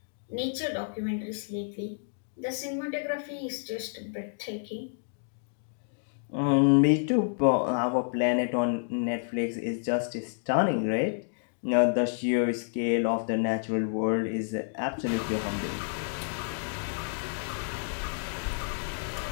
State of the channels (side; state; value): right; silent; digital silence